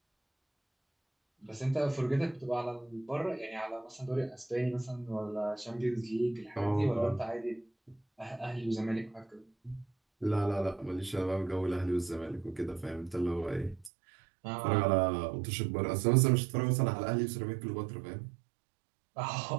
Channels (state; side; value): drops out; left; at 13.9 s